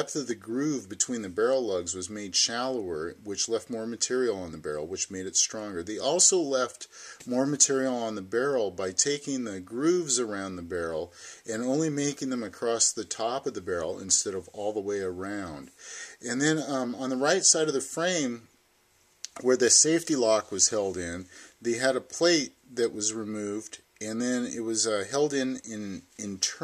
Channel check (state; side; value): identical; both; correlation 1.00